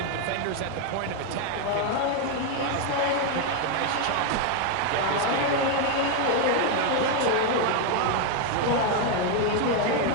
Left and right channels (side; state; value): both; different; correlation 0.01